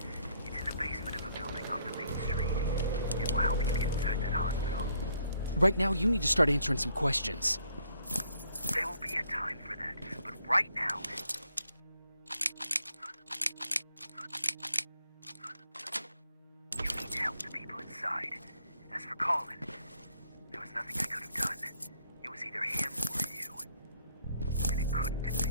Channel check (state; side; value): inverted; both; correlation -0.69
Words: It's in the basement of a building off the main street. It will help you get inside that hospital. Right now, you need to start answering some questions. There will be a time for that, but right now... You need to help the people inside. As for Colin, there was nothing I could have done. It was either him or you. And it couldn't have